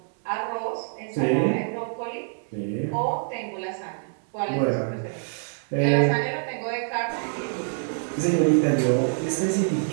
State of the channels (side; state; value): left; silent; 61 dB below the other